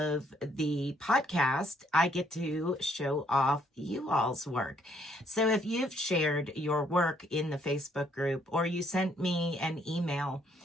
the podcast, I get to show off you all's work. So if you've shared your work in the Facebook group or you sent me an email,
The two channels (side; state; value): both; normal; correlation 0.68